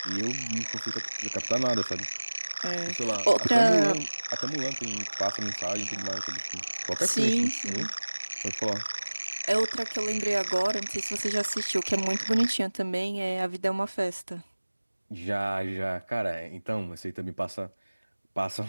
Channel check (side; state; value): both; inverted; correlation -1.00